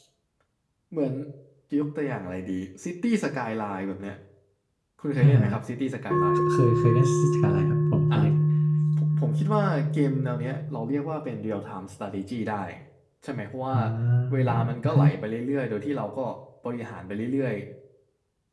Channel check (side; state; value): both; identical; correlation 1.00